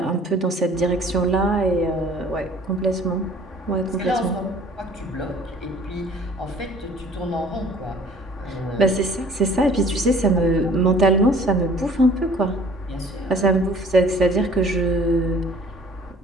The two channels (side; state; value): both; normal; correlation 0.52